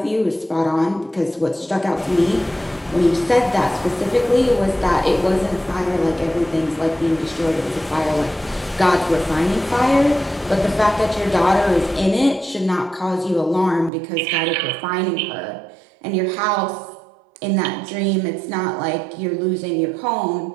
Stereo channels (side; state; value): left; drops out; at 13.9 s